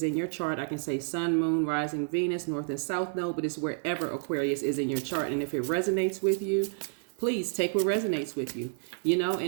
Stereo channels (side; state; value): left; silent; digital silence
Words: in your chart. I can say sun, moon, rising, Venus, north and south node, but it's wherever Aquarius is in your chart. And if it resonates with you, please take what resonates with you,